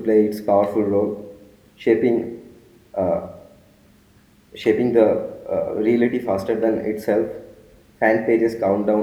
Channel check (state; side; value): identical; both; correlation 1.00